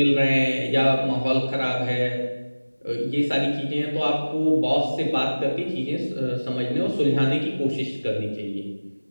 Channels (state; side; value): inverted; both; correlation -1.00